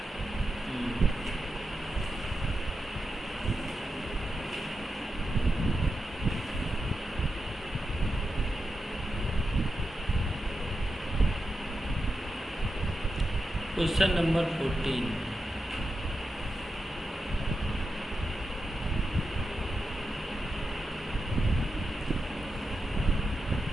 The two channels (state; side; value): normal; both; correlation 0.89